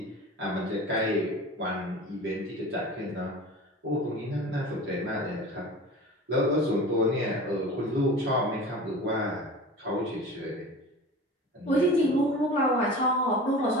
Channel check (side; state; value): both; normal; correlation 0.36